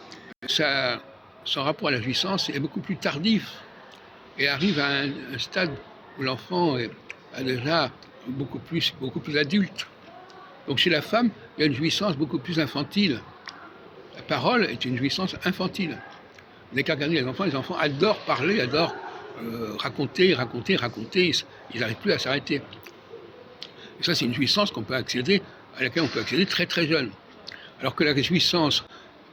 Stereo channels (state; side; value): identical; both; correlation 1.00